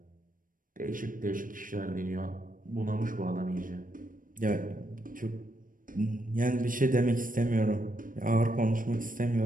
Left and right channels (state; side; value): late; left; 0.40 ms